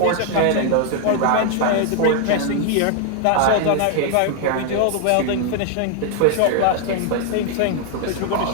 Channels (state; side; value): different; both; correlation 0.00